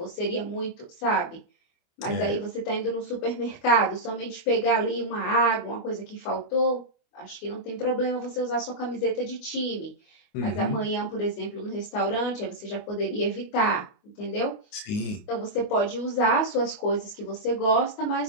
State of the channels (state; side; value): late; right; 29 ms